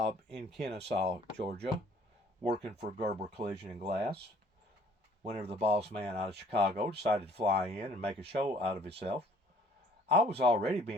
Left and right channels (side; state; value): both; normal; correlation 0.57